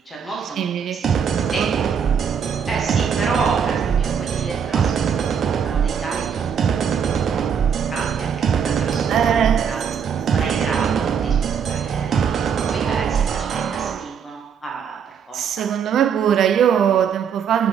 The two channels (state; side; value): quieter; left; 7.3 dB